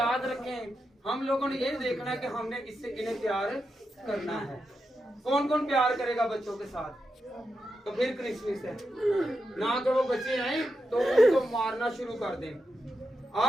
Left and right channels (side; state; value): both; normal; correlation 0.87